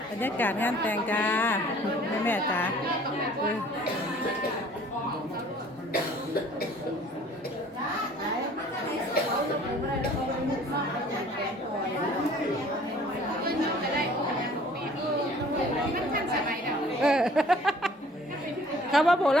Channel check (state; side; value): normal; both; correlation 0.52